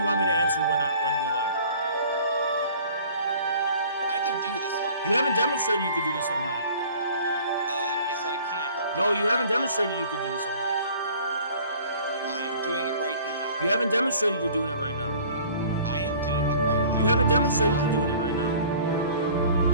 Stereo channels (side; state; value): both; inverted; correlation -0.49